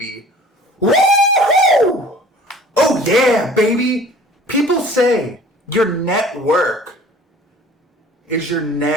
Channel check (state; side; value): normal; both; correlation 0.48